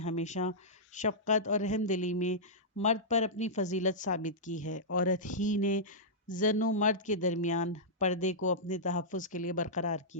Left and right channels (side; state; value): both; normal; correlation -0.13